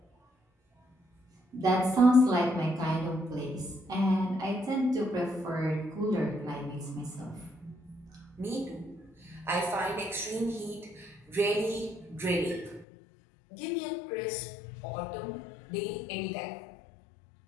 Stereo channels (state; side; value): drops out; right; at 12.9 s